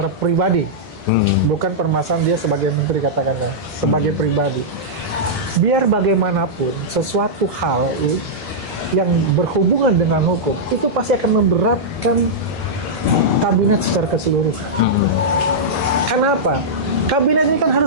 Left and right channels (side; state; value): both; normal; correlation -0.10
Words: pribadi. Bukan permasalahan dia sebagai menteri, katakanlah sebagai pribadi. Biar bagaimanapun sesuatu hal yang berhubungan dengan hukum itu pasti akan memberatkan kabinet secara keseluruhan. Kenapa? Kabinet ini kan